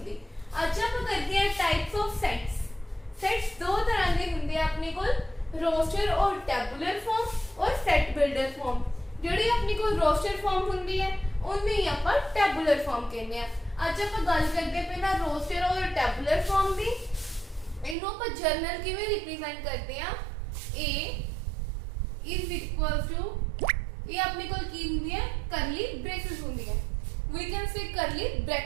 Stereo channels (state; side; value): drops out; left; at 17.9 s